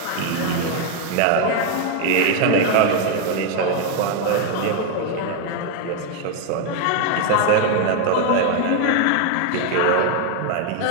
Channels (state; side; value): different; both; correlation 0.01